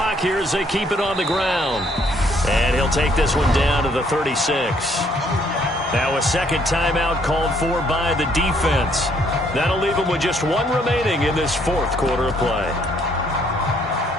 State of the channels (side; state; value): both; normal; correlation 0.67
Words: here as they keep it on the ground. And he'll take this one down to the 36. Now a second timeout called for by the defense. That'll leave them with just one remaining in this fourth quarter of play.